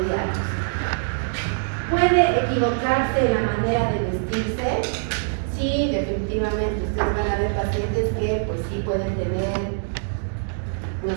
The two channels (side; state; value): left; silent; digital silence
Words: ¿Puede equivocarse en la manera de vestirse? Sí, definitivamente. Ustedes van a ver pacientes que pues sí pueden tener, no